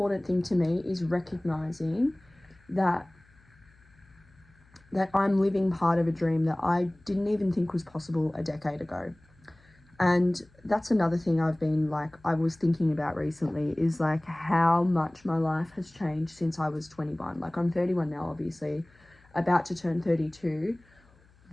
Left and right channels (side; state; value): left; noise; hum, 30 dB below the sound